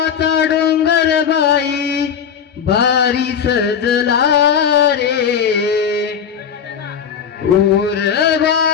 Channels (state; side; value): quieter; right; 7.5 dB